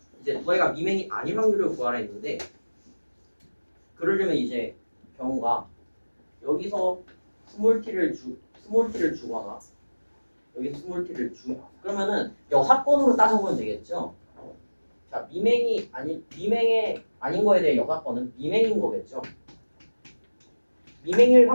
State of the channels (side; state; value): both; inverted; correlation -1.00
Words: 두 아이가 미맹이 아닐 확률을 구하라 했는데 그러려면 이제 경우가 여기서 스몰 t를 주거나 여기서 스몰 t를 그러면은 여사건으로 따져보면 되겠죠. 자, 미맹이 아닌 거에 대해 여사건은 미맹인 거겠죠. 미맹일